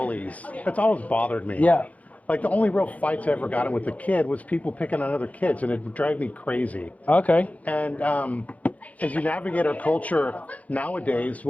It's always bothered me. Yeah. Like the only real fights I ever got in with a kid was people picking on other kids, and it would drive me crazy. Okay. And as you navigate our culture nowadays,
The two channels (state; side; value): late; right; 0.070 ms